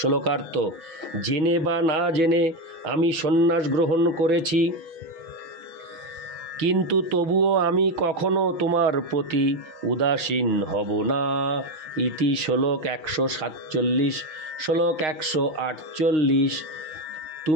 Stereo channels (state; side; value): late; left; 6.0 ms